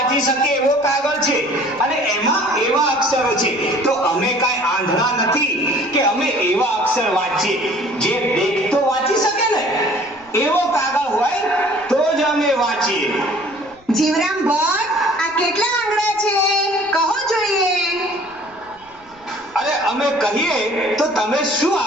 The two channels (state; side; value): noise; left; rumble, 30 dB below the sound